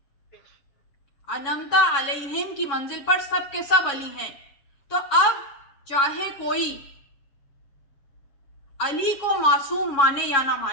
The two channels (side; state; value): right; late; 7.2 ms